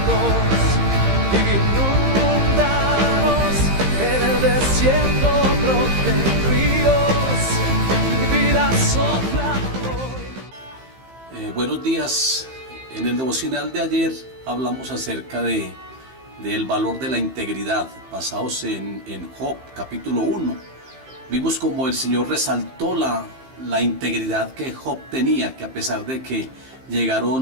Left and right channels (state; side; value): late; left; 15 ms